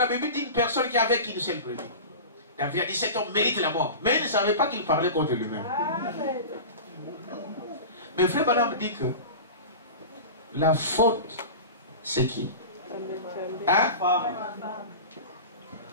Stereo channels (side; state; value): both; inverted; correlation -0.31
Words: brebis d'une personne qui avait qu'une seule brebis. David a dit, cet homme mérite la mort. Mais il ne savait pas qu'il parlait contre lui-même. Mais frère Branham dit que la faute, c'est qui? Hein?